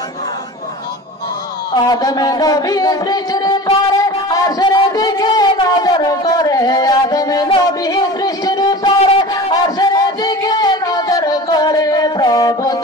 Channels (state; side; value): normal; both; correlation 0.36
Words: আদম নবী সৃষ্টির পরে আরশের দিকে নজর করে আদম নবী সৃষ্টির পরে আরশের দিকে নজর